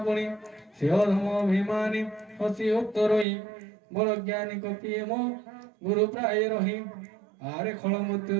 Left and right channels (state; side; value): drops out; left; at 3.2 s